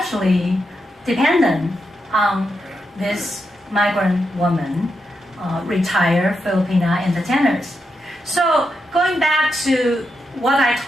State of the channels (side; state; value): both; normal; correlation 0.85